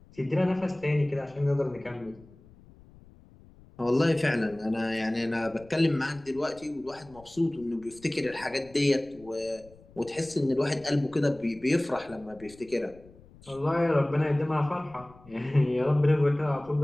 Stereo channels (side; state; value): left; noise; rumble, 24 dB below the sound